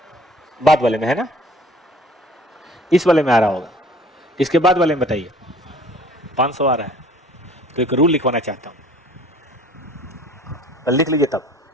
बाद वाले में है ना, इस वाले में आ रहा होगा। इसके बाद वाले में बताइए, 500 आ रहा है। तो एक रूल लिखवाना चाहता हूं, लिख लीजिए तब।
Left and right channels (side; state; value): both; normal; correlation 0.51